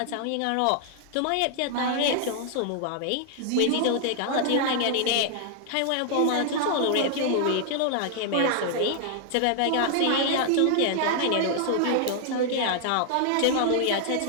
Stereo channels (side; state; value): both; different; correlation 0.00